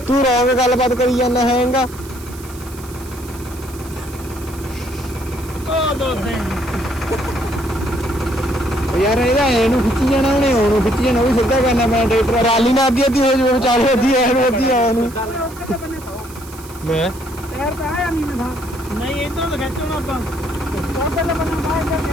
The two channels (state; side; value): noise; right; hiss, 19 dB below the sound